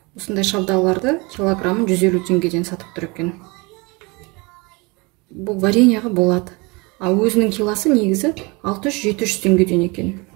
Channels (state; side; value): quieter; left; 27.0 dB